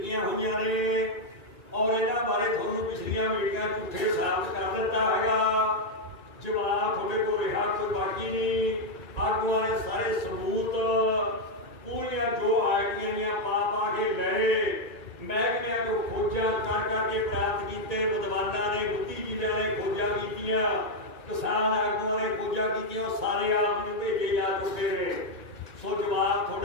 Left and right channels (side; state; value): right; late; 2.4 ms